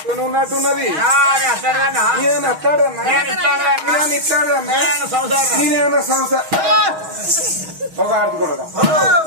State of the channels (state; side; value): late; left; 6.3 ms